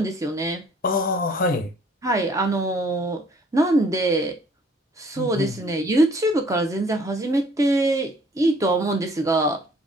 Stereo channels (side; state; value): both; normal; correlation 0.58